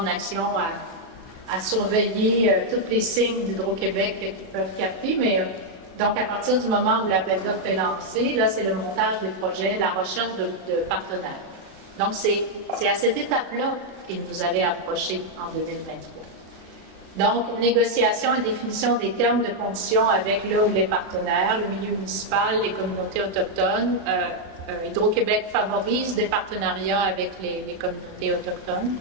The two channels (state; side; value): late; left; 36 ms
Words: action à surveiller tous les signes d'Hydro-Québec qu'ils peuvent capter. Mais donc, à partir du moment où l'appel d'offres est lancé, là, c'est le montage des projets, la recherche de partenaires. Donc, c'est à cette étape-là qu'ils nous avaient approchés en 2023. Donc, négociation et définition des termes de conditions avec le ou les partenaires, le milieu municipal, les communautés autochtones. Hydro-Québec favorise des partenariats avec les communautés autochtones.